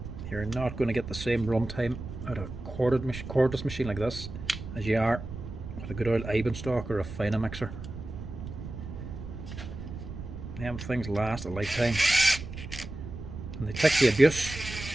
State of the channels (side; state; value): right; noise; rumble, 10 dB below the sound